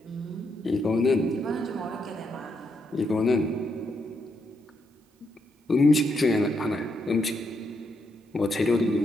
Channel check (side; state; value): both; normal; correlation 0.79